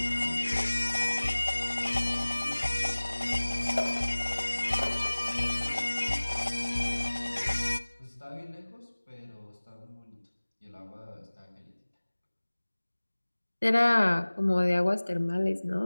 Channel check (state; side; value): inverted; both; correlation -1.00